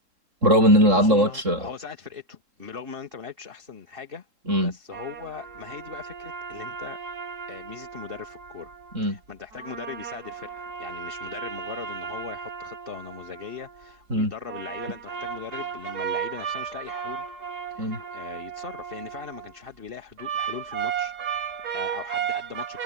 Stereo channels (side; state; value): left; late; 3.7 ms